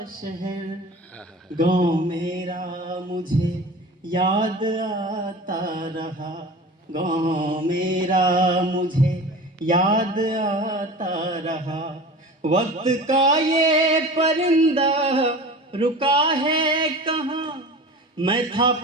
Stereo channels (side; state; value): both; normal; correlation 0.36